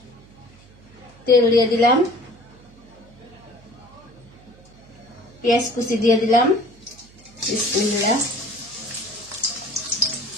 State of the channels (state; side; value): noise; right; hum, 25 dB below the sound